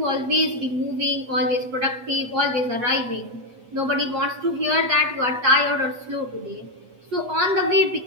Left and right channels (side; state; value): left; late; 8.3 ms